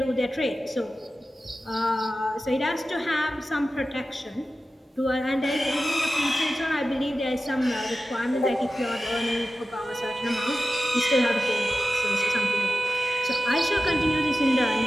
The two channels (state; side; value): normal; both; correlation 0.93